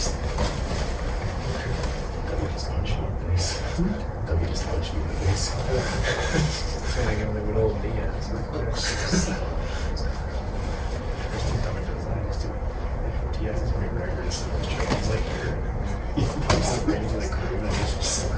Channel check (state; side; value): identical; both; correlation 1.00